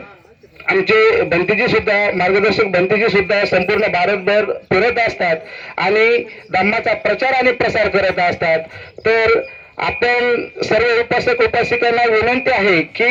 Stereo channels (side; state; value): both; identical; correlation 1.00